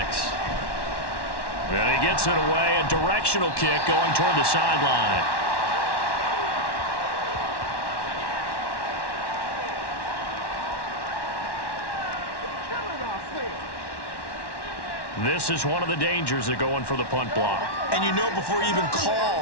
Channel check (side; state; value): right; late; 1.1 ms